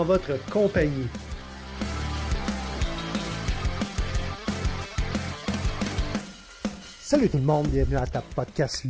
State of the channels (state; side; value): identical; both; correlation 1.00